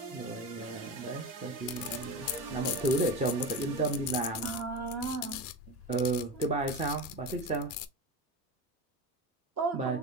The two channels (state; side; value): normal; both; correlation 0.23